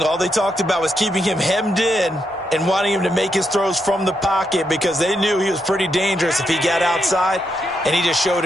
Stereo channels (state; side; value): normal; both; correlation 0.81